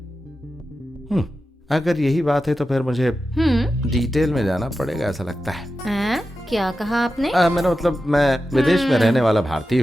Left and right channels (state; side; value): normal; both; correlation 0.92